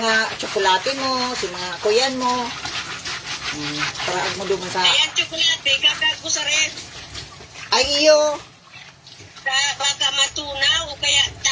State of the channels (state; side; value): identical; both; correlation 1.00